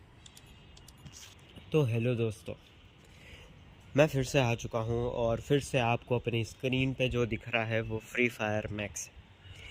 तो हेलो दोस्तों, मैं फिर से आ चुका हूँ और फिर से आपको अपनी स्क्रीन पे जो दिख रहा है वो फ्री फायर मैक्स है।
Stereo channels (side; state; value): both; identical; correlation 1.00